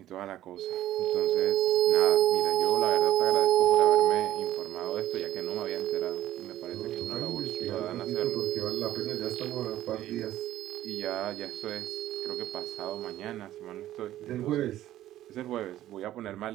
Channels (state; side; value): quieter; left; 13.5 dB